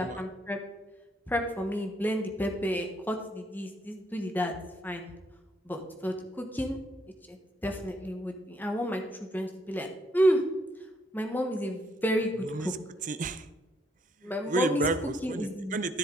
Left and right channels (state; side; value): normal; both; correlation 0.71